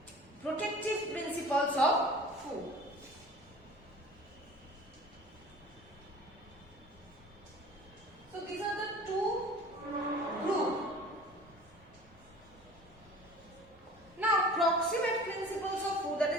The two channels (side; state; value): both; normal; correlation 0.43